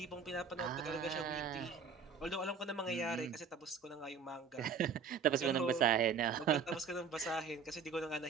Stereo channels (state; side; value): quieter; left; 5.8 dB